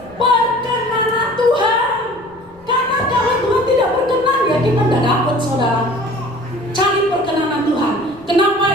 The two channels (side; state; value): left; noise; rumble, 27 dB below the sound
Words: perkenanan Tuhan. Karena kalau Tuhan tidak berkenan, ya kita tidak dapat, saudara. Cari perkenanan Tuhan.